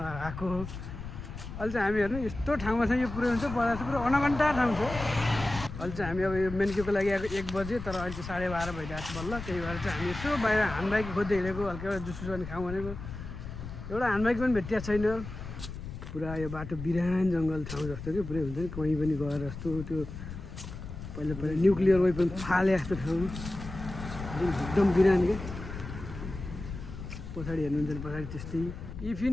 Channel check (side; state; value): left; noise; rumble, 9 dB below the sound